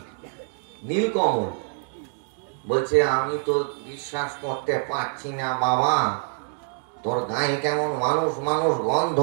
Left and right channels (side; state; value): left; silent; 57 dB below the other